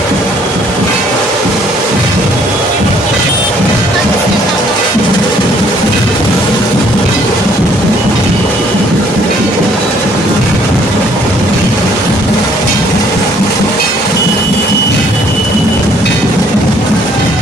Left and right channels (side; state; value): both; normal; correlation 0.62